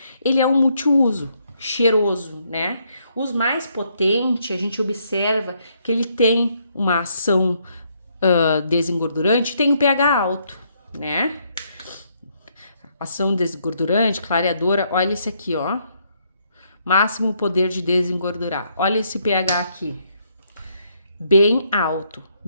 Ele é um multiuso, cheiroso, né? Os mais potentes, a gente observa que ele tem uma ação desengordurante, tem um pH alto, né? Ação desengordurante, clareadora, olha esse aqui, ó. Máximo poder de desengordurar. Olha esse pH aqui. Bem alto,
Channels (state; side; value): inverted; both; correlation -0.73